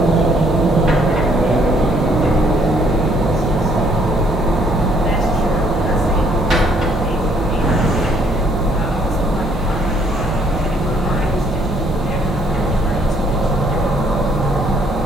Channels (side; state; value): both; normal; correlation 0.66